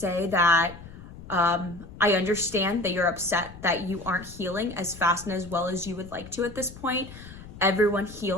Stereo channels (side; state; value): left; noise; rumble, 16 dB below the sound